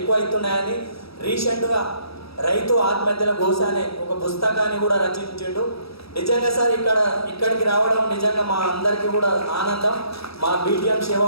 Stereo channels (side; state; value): right; late; 0.77 ms